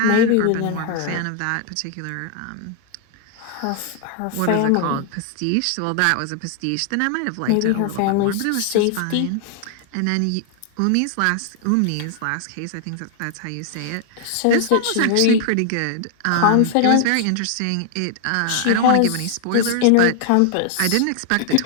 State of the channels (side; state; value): both; different; correlation 0.00